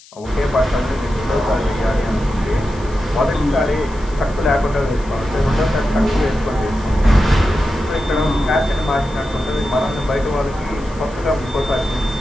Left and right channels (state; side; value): noise; left; hiss, 24 dB below the sound